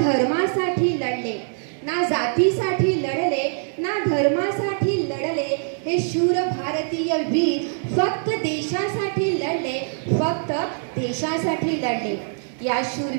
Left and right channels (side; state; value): left; silent; 63 dB below the other